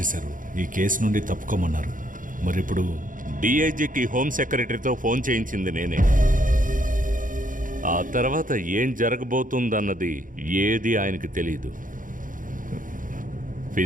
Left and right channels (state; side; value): late; left; 0.39 ms